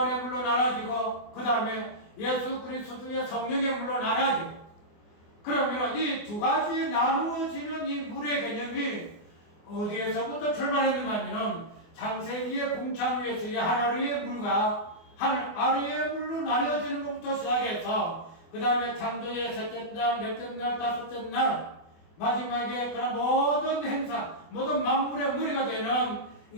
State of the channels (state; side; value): late; right; 24 ms